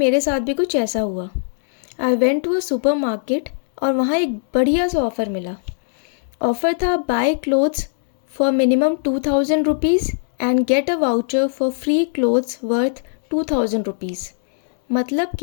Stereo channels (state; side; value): silent; right; 66 dB below the other